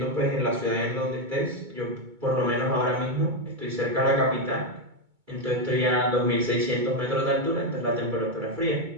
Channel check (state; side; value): late; left; 2.2 ms